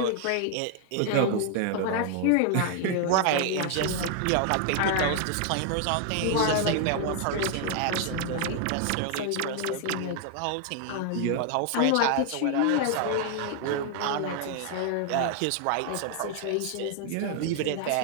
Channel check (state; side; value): different; both; correlation 0.00